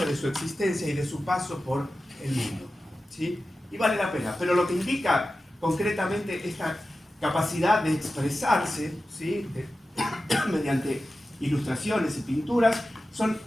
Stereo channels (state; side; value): normal; both; correlation 0.94